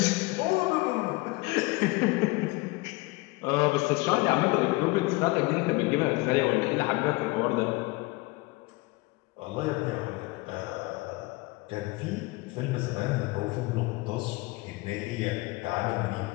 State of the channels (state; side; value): quieter; right; 23.2 dB